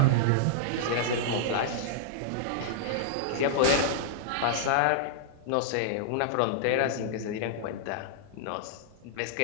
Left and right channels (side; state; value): both; different; correlation -0.01